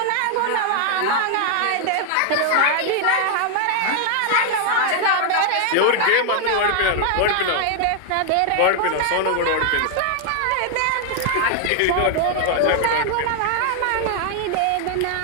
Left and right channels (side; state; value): both; different; correlation 0.00